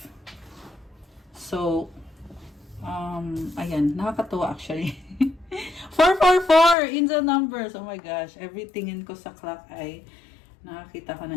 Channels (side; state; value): right; drops out; at 6.8 s